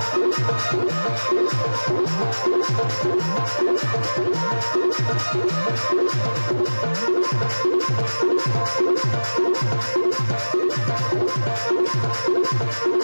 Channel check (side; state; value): both; inverted; correlation -1.00